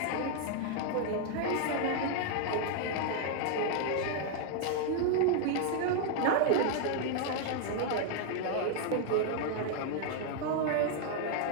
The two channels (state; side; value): different; both; correlation 0.00